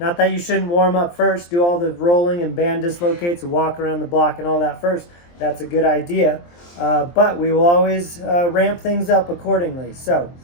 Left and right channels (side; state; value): right; late; 23 ms